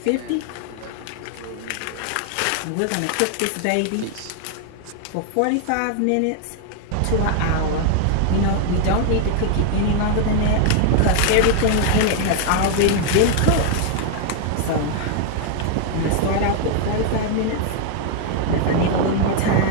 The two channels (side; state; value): both; different; correlation 0.00